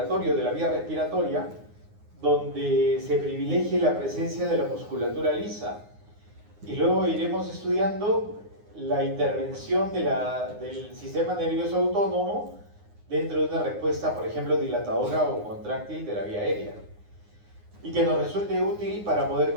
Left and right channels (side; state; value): left; late; 9.7 ms